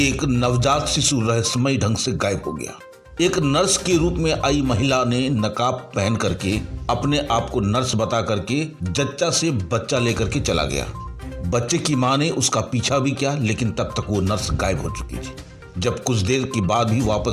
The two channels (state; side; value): identical; both; correlation 1.00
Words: नवजात शिशु रहस्यमय ढंग से गायब हो गया। एक नर्स के रूप में आई महिला ने नकाब पहन करके अपने आप को नर्स बता करके जच्चा से बच्चा लेकर के चला गया। बच्चे की मां ने उसका पीछा भी किया, लेकिन तब तक वो नर्स गायब हो चुकी थी। जब कुछ देर के बाद भी